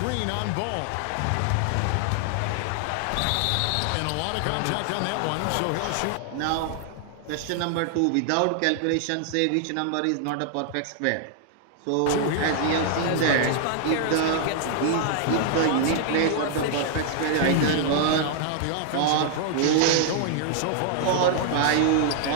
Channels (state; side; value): different; both; correlation -0.01